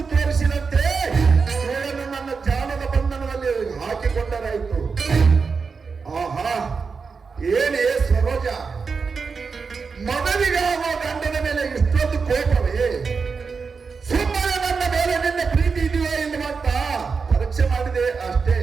ತೋರಿಸಿದಂತೆ ಇವರನ್ನು ನನ್ನ ಜಾಲದ ಬಂಧನದಲ್ಲಿ ಹಾಕಿಕೊಂಡರಾಯಿತು. ಆಹಾ, ಏನೇ ಸರೋಜ, ಮಗನಿಗಾಗುವ ಗಂಡನ ಮೇಲೆ ಇಷ್ಟೊಂದು ಕೋಪವೇ? ಸುಮ್ಮನೆ ನನ್ನ ಮೇಲೆ ನಿನ್ನ ಪ್ರೀತಿ ಇದೆಯೋ ಎನ್ನುವಂತ ಪರೀಕ್ಷೆ ಮಾಡಿದೆ ಅಷ್ಟೇ.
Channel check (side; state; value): left; quieter; 5.1 dB